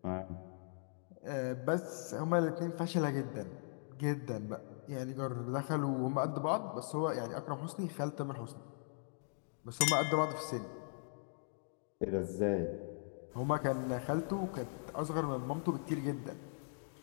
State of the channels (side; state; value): right; silent; digital silence